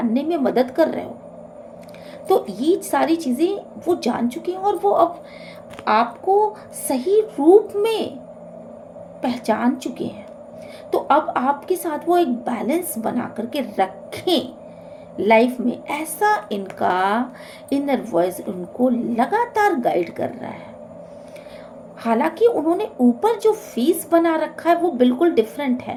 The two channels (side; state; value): both; identical; correlation 1.00